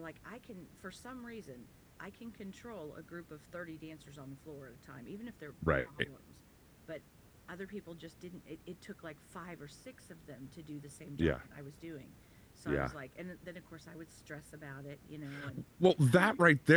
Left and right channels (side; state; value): both; identical; correlation 1.00